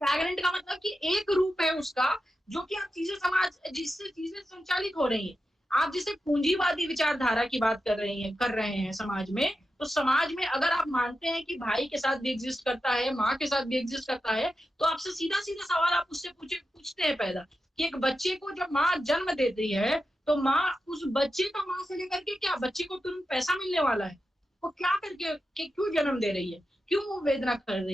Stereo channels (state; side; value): normal; both; correlation 0.90